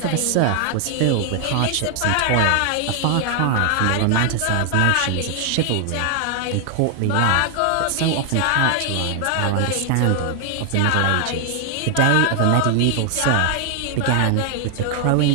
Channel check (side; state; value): both; different; correlation 0.00